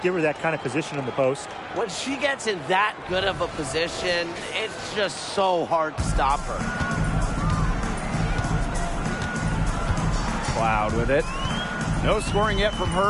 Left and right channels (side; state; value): both; identical; correlation 1.00